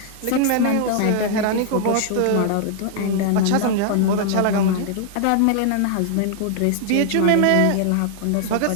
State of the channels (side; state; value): both; different; correlation 0.00